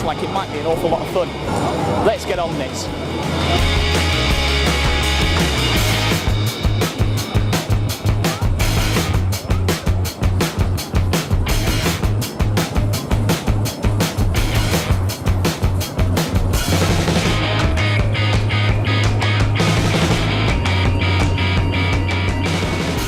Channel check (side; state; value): both; identical; correlation 1.00